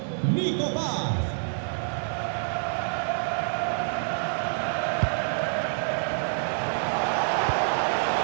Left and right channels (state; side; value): silent; left; 60 dB below the other